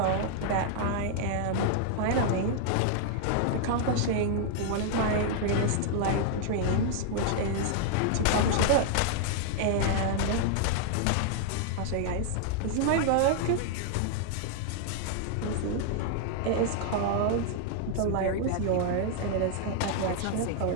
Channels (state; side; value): different; both; correlation 0.00